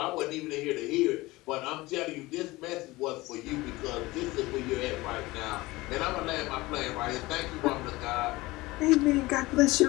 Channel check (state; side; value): quieter; right; 20.5 dB